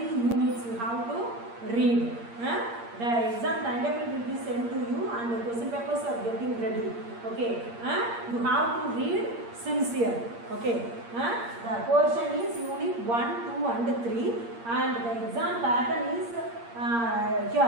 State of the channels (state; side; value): late; left; 8.6 ms